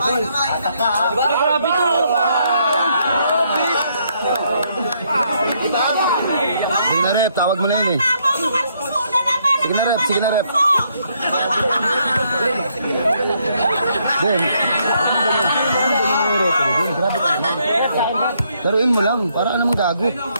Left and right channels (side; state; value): both; inverted; correlation -0.72